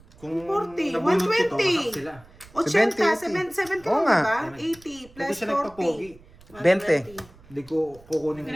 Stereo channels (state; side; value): noise; right; rumble, 24 dB below the sound